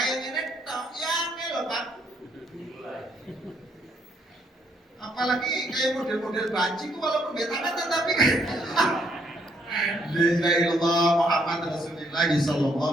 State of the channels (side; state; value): both; normal; correlation 0.71